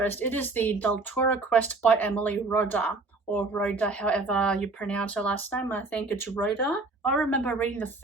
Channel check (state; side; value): quieter; left; 3.5 dB